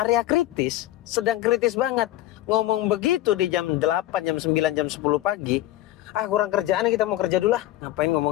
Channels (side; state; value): right; quieter; 15.0 dB